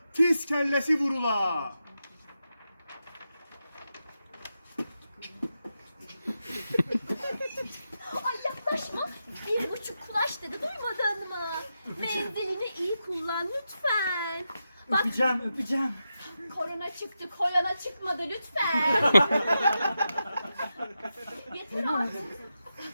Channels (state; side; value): inverted; both; correlation -0.88